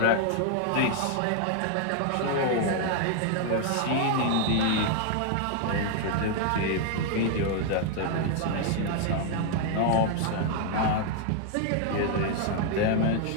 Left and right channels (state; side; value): different; both; correlation 0.00